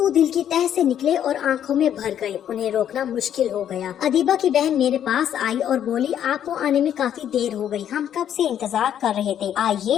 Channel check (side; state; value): right; quieter; 9.9 dB